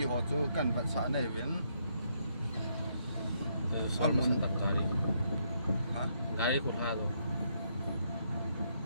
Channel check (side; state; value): both; inverted; correlation -0.74